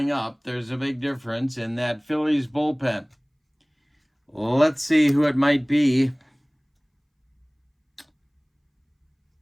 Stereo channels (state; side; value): identical; both; correlation 1.00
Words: up. There's a big difference in that Phillies bullpen. Let's see who it might be.